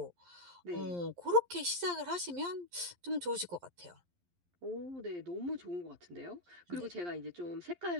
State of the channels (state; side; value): late; left; 11 ms